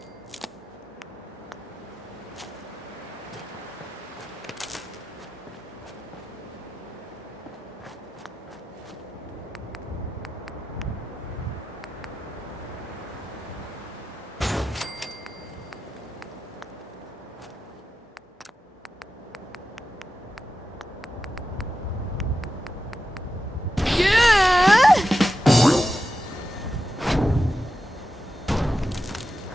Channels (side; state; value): both; normal; correlation 0.91